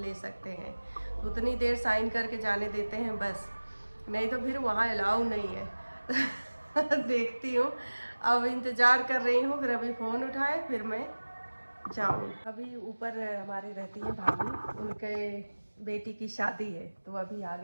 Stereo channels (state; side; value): inverted; both; correlation -1.00